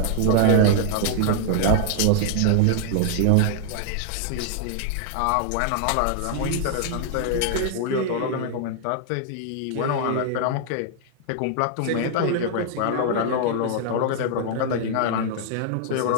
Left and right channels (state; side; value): different; both; correlation 0.00